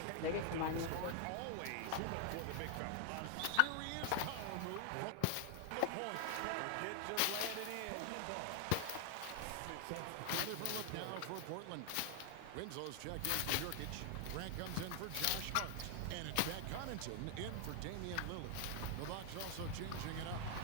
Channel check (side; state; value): both; different; correlation 0.00